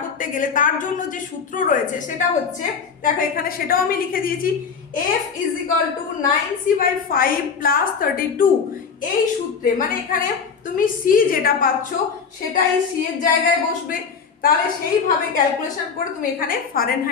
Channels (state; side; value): quieter; right; 5.9 dB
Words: করতে গেলে তার জন্য যে সূত্র রয়েছে সেটা হচ্ছে, দেখো এখানে সেটাও আমি লিখে দিয়েছি, F is equal to 9c/5 plus 32। এই সূত্রে মানে এখানে তুমি c যেটা পাচ্ছ সেটা এই c এর জায়গায় বসবে, তাহলে সেইভাবে ক্যালকুলেশন করে তুমি এখানে